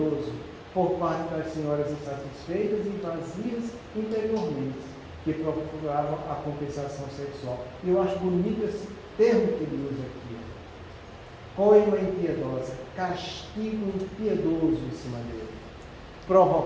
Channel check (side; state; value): both; identical; correlation 1.00